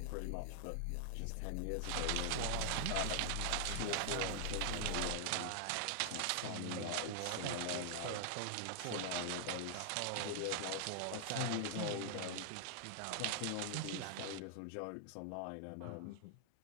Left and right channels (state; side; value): different; both; correlation -0.01